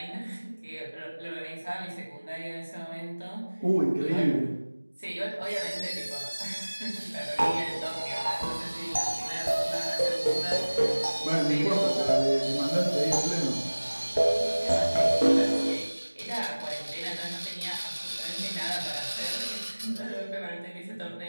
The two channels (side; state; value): both; inverted; correlation -1.00